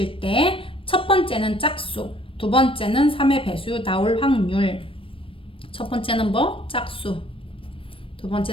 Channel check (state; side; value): late; right; 0.26 ms